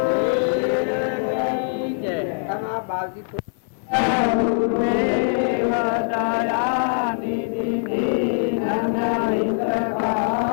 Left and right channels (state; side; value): silent; right; 64 dB below the other